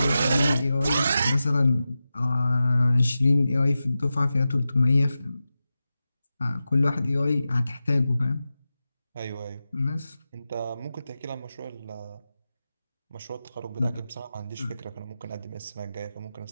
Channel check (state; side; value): inverted; both; correlation -0.93